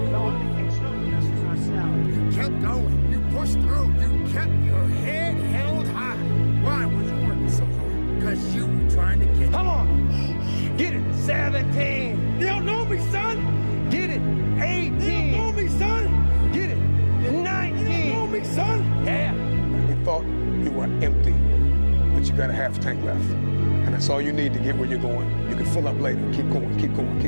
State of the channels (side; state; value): both; inverted; correlation -1.00